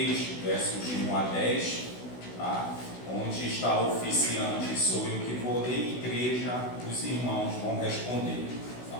versos de 1 a 10, tá? Onde está o oficiante, sou eu que vou ler, igreja, os irmãos vão responder, tá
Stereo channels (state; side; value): late; right; 16 ms